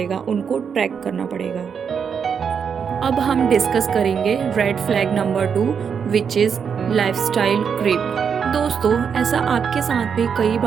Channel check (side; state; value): left; quieter; 6.8 dB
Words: उनको ट्रैक करना पड़ेगा। अब हम डिस्कस करेंगे red flag number 2, which is lifestyle creep. दोस्तों, ऐसा आपके साथ भी कई